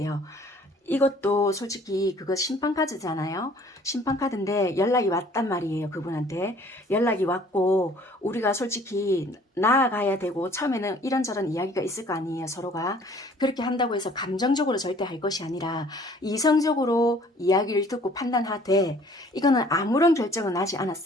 이것도 솔직히 그거 심판카드잖아요. 심판카드인데 연락이 왔단 말이에요. 그분한테 연락이 왔고 우리가 솔직히 나아가야 되고 처음에는 이런저런 이야기가 있을 거 아니에요. 서로가 그렇게 한다고 해서 감정적으로 절대 할 것이 아니라 이성적으로 이야기를 듣고 판단하되 이거는 아무런 결정은 나지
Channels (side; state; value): both; normal; correlation 0.55